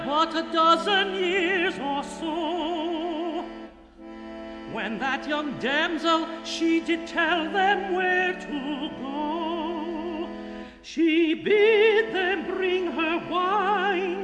but a dozen years or so, when that young damsel, she did tell them where to go. She bid them bring her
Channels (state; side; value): identical; both; correlation 1.00